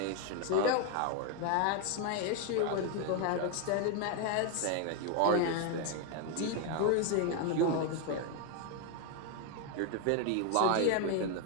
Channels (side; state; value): both; different; correlation 0.01